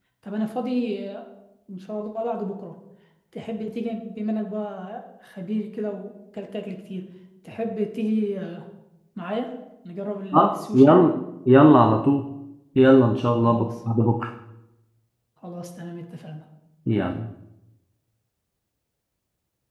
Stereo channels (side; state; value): both; identical; correlation 1.00